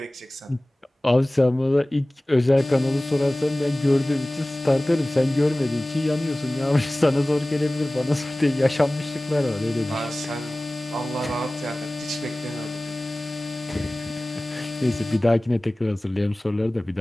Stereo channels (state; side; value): normal; both; correlation 0.98